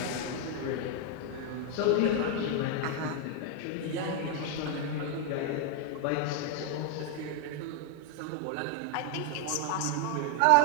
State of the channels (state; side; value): different; both; correlation 0.01